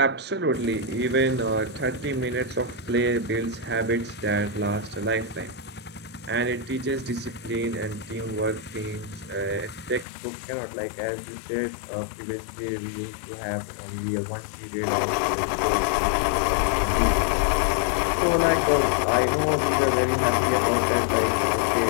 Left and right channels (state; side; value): drops out; right; at 10.1 s